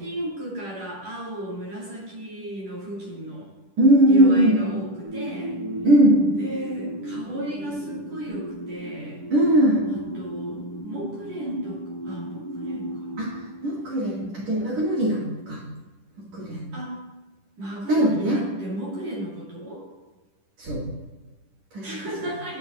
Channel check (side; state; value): left; late; 10 ms